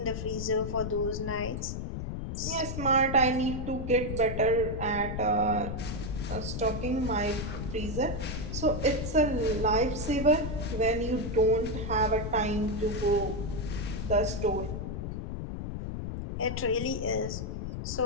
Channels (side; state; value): left; noise; rumble, 5 dB below the sound